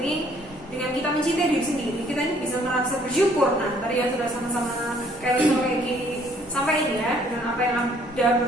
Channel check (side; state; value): both; normal; correlation 0.62